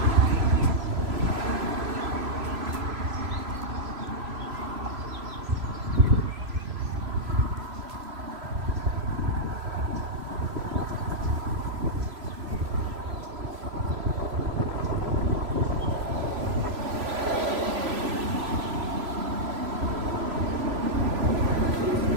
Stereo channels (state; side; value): late; left; 3.0 ms